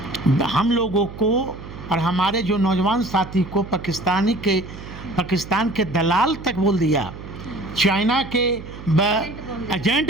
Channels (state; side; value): noise; right; hum, 13 dB below the sound